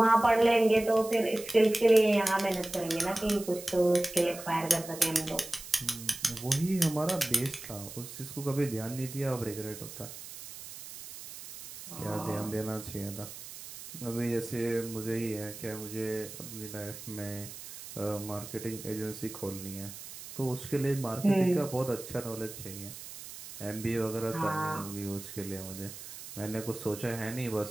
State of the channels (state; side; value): noise; right; hiss, 13 dB below the sound